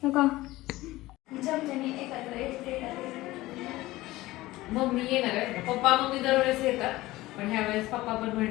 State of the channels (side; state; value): right; quieter; 18.1 dB